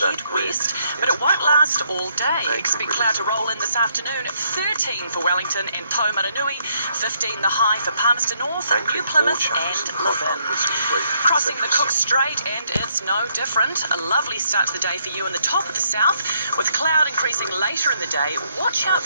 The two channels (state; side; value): inverted; both; correlation -0.72